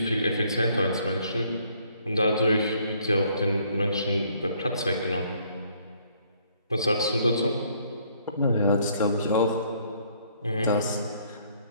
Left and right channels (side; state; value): both; inverted; correlation -0.64